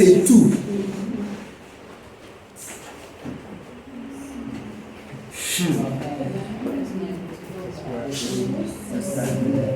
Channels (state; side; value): identical; both; correlation 1.00